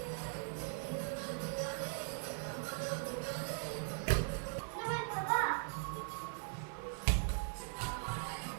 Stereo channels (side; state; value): left; silent; 51 dB below the other